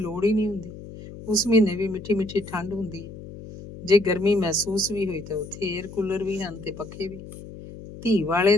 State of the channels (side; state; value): left; noise; hum, 14 dB below the sound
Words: ਹੀ ਨਹੀਂ ਹੁੰਦੀ। ਉਸ ਮਹੀਨੇ ਵੀ ਮਿੱਠੀ ਮਿੱਠੀ ਠੰਡ ਹੁੰਦੀ ਹੈ। ਜੇ ਗਰਮੀ ਮਹਿਸੂਸ ਵੀ ਹੋਈ ਤਾਂ ਉੱਥੇ ਏਅਰ ਕੂਲਰ ਵੀ ਹਨ ਤੇ ਪੱਖੇ ਵੀ। ਧੀ ਵਾਲੇ